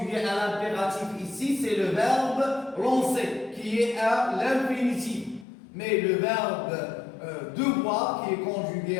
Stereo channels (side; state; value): right; drops out; at 5.5 s